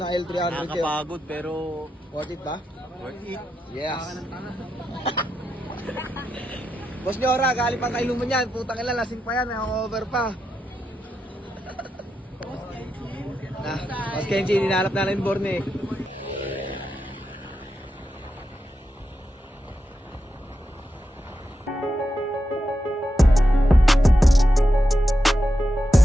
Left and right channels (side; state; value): both; normal; correlation 0.87